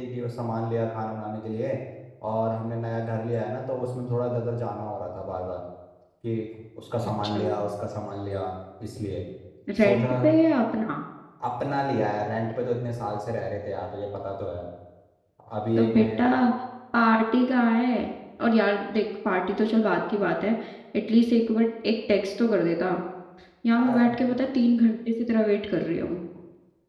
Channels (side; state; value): both; identical; correlation 1.00